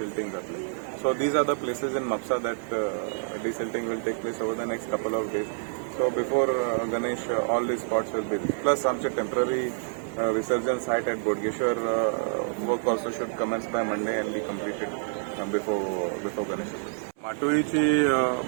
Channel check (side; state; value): left; silent; 60 dB below the other